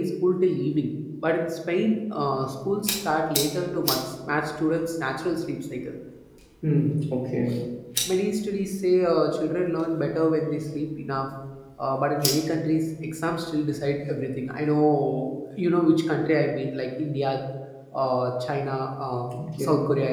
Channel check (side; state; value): both; identical; correlation 1.00